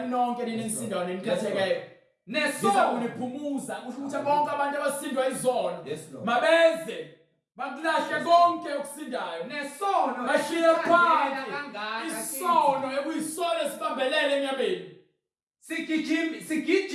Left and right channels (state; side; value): identical; both; correlation 1.00